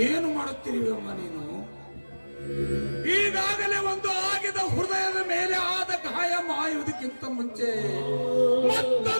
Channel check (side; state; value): both; inverted; correlation -1.00